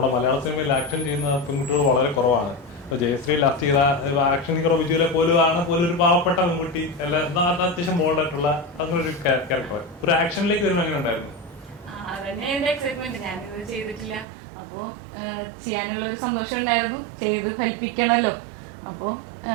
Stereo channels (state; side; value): drops out; left; at 14.2 s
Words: മലയാള സിനിമയിൽ ആക്ഷൻ ചെയ്യുന്ന പെൺകുട്ടികൾ വളരെ കുറവാണ്. ഇപ്പൊ ജയശ്രീ ലാസ്റ്റ് ചെയ്ത ആക്ഷൻ ഹീറോ വിജുവിലെ പോലും ഒരു പാവപ്പെട്ട പെൺകുട്ടി എല്ലാം അത്യാവശ്യം ബോൾഡായിട്ടുള്ള അങ്ങനെ ഒരു ക്യാരക്ടർ. ഒരു ആക്ഷനിലേക്ക് വരുമ്പോൾ എങ്ങനെ ഉണ്ടായിരുന്നു? അതന്നെ എന്റെ എക്സൈറ്റ്മെന്റ്. ഞാനിത് ചെയ്തിട്ടില്ല, അപ്പോ ചെയ്യാനുള്ള ഒരു സന്തോഷം ഉണ്ടായിരുന്നു. ചെയ്ത് ഫലിപ്പിക്കണല്ലോ. അപ്പോ